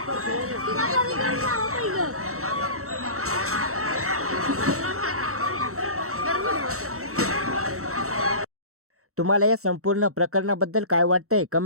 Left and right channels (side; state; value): left; late; 0.64 ms